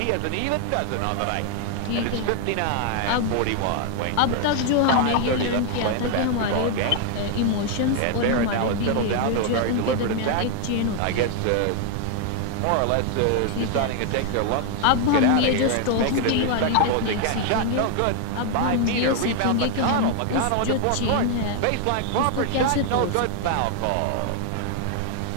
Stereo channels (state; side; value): different; both; correlation 0.00